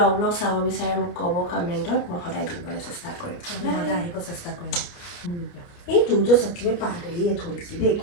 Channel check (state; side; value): late; right; 29 ms